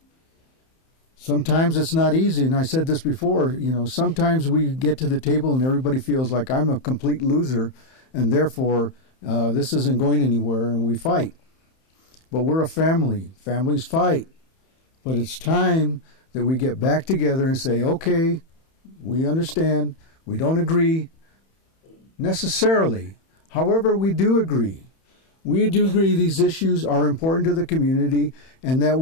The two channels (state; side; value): late; right; 31 ms